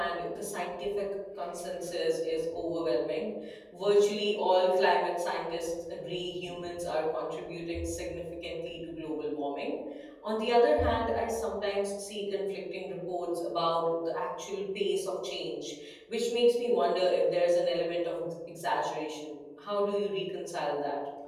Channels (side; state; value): both; identical; correlation 1.00